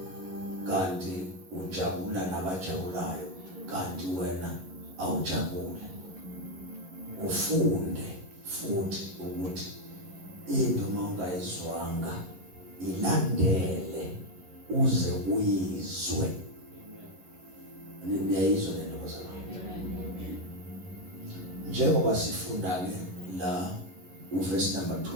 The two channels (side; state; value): left; late; 11 ms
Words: kanti ujabula nabajabulayo kanti wena awujabule. Ufunde futhi ukuthi into mawungayizwanga ilandele uze uyizwe. Niyayizwa lento bazalwane? Njengoba sifunda ke la uverse number